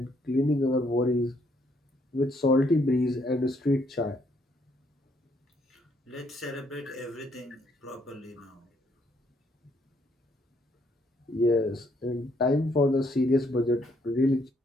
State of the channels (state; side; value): normal; both; correlation 0.70